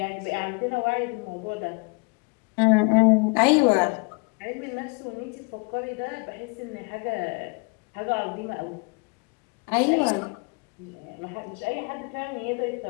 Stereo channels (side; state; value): right; quieter; 31.9 dB